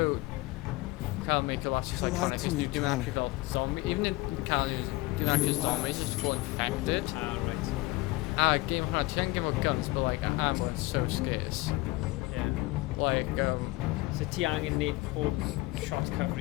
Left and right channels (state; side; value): quieter; right; 21.0 dB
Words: cael make a lot of You lied iconic to is me, you do Connor. actually feel zombie, even in Cali, you actually zombies just feel infected. Ah, right. Game hwnna, ti angen gyda guns, but like ammo is so scarce. Yeah. Like, So ti angen neud pob shot